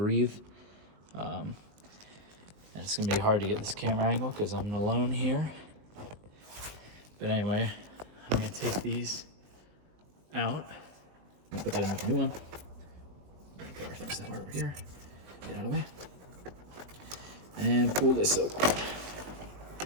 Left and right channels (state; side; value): late; left; 20 ms